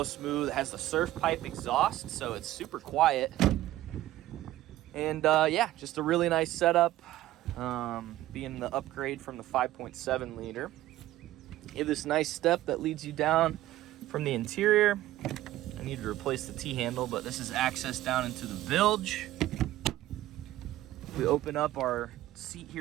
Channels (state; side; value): quieter; left; 14.9 dB